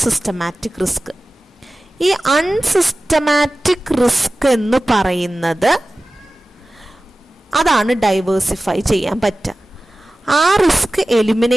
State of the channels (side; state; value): both; normal; correlation 0.96